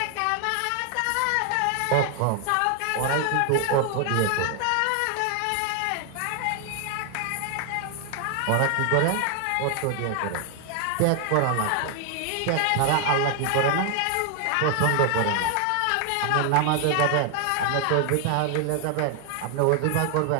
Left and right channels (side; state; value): both; different; correlation 0.00